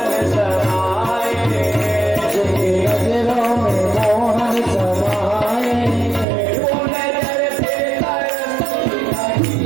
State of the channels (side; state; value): left; drops out; at 6.2 s